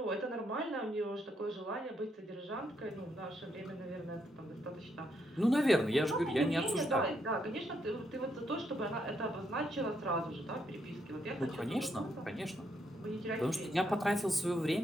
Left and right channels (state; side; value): normal; both; correlation 0.76